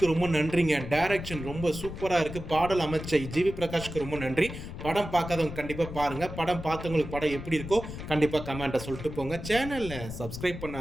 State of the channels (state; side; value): noise; left; rumble, 9 dB below the sound